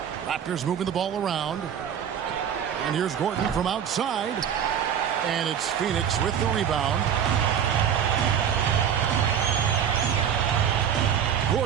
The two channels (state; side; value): quieter; left; 8.5 dB